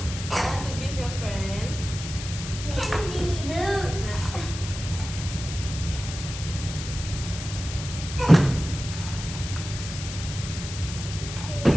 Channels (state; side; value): noise; left; hiss, 9 dB below the sound